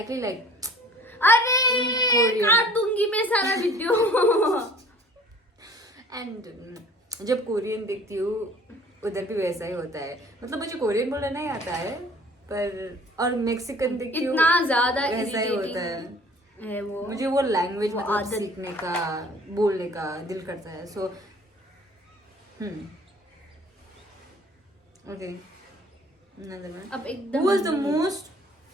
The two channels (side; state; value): both; normal; correlation 0.50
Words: like, अरे काट दूंगी मैं सारा वीडियो. एंड जब कोरियन देखती हूँ उधर भी वैसा ही होता है. मतलब मुझे कोरियन बोलना नहीं आता है, पर और मेक्सिकन देखती हूँ इतना ज्यादा वैसा ही होता है वो. मुझे वो लैंग्वेज वो मतलब आदत. सीखने का, बोलने का दिल करता है. So okay, another one. अब एकदम